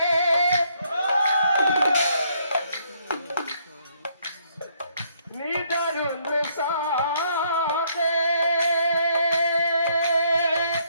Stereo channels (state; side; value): inverted; both; correlation -0.70